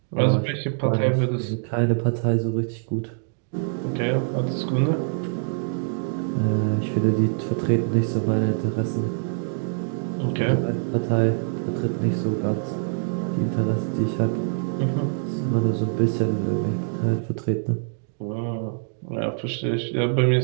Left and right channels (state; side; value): silent; left; digital silence